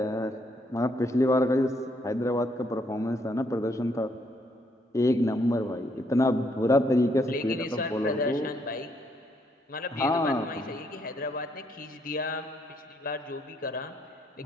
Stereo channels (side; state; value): both; normal; correlation 0.72